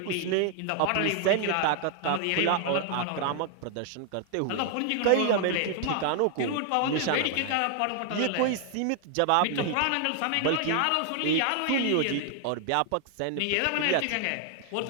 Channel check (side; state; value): both; different; correlation 0.00